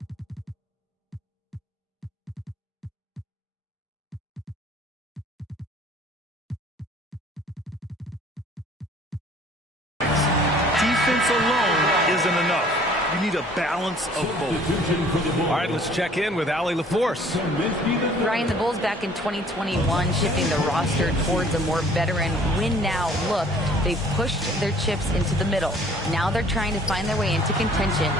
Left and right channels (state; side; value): normal; both; correlation 0.54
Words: defense alone isn't enough. You need a balance of both. All right, let's check in with Allie LaForce. Ryan, the Bulls back in 2021 shifting the roster towards a more veteran win-now look. They've pushed their chips into the middle. Now they're trying to find their way into contention.